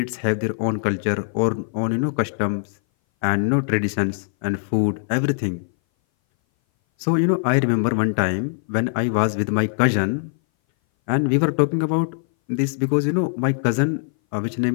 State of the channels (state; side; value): silent; right; 59 dB below the other